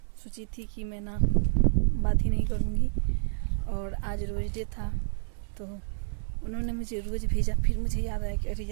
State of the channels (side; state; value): left; silent; 59 dB below the other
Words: सोची थी कि मैं ना बात ही नहीं करूँगी। और आज रोज़ डे था तो उन्होंने मुझे रोज़ भेजा। फिर मुझे याद आया कि अरे